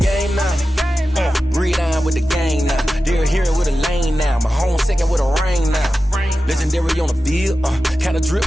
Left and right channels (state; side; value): normal; both; correlation 0.93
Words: now. Read on with the gang now. They're here with a lane now. My home second with a rain now. Legendary on the field, kinda